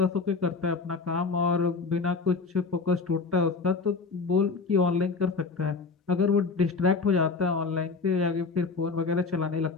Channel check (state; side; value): quieter; right; 4.5 dB